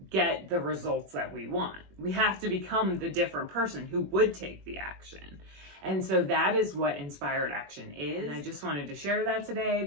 get the results that we want. We have to become the different person who would take the action. And so that is what inspired action is. And I just wanted to share that today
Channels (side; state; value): left; late; 21 ms